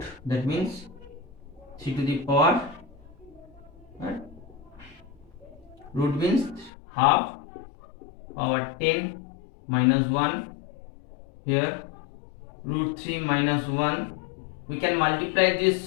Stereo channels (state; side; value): drops out; right; at 6.7 s